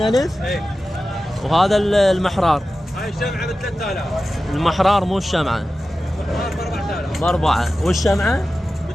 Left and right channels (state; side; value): normal; both; correlation 0.94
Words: ايه. وهذا المحرار. هاي الشمعة ب3000. المحرار مو الشمعة. ب4. والشمعة